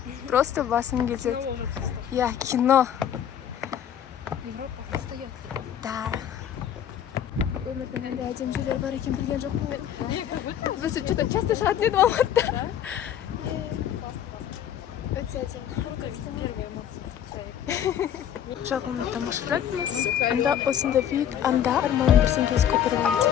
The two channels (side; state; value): right; quieter; 9.7 dB